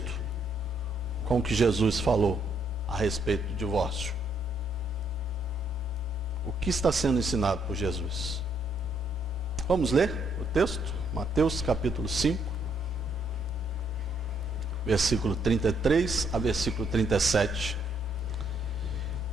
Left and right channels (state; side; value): normal; both; correlation 0.72